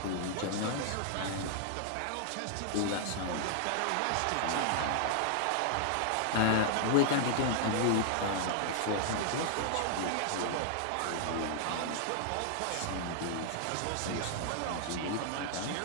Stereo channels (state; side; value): different; both; correlation -0.01